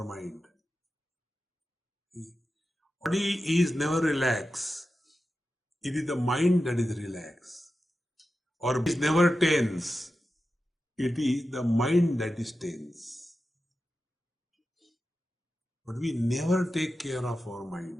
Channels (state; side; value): normal; both; correlation 0.92